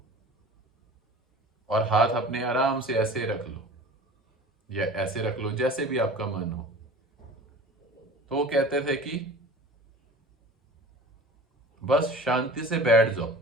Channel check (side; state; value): both; normal; correlation 0.41